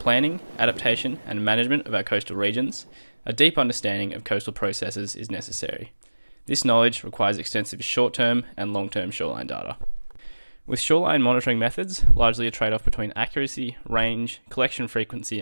adaptation and management of our coastal regions, a deep understanding of coastal processes is necessary. This knowledge requires extensive short-term and long-term shoreline data. With shoreline monitoring methods largely a trade-off between accuracy, range, collection frequency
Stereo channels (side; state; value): both; inverted; correlation -1.00